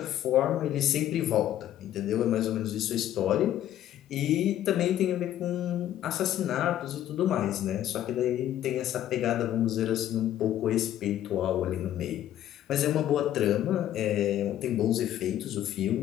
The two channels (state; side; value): quieter; right; 12.0 dB